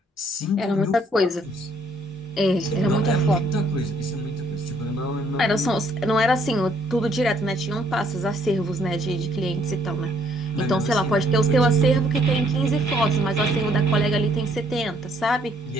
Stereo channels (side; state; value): both; normal; correlation 0.67